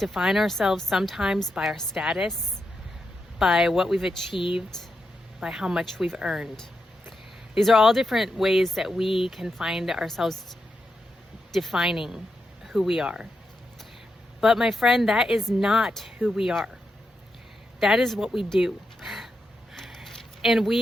ourselves sometimes by our status, by what we've achieved, by how much we've earned. These are all different ways that we can find ourselves defining who we are. But my friend, that is not who we are. That is what we do. And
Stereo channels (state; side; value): normal; both; correlation 0.85